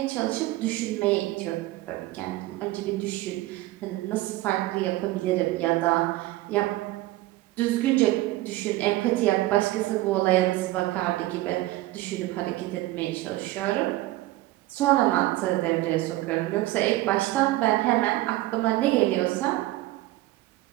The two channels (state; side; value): quieter; left; 17.6 dB